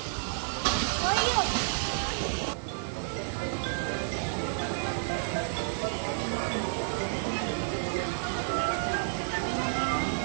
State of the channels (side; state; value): left; silent; digital silence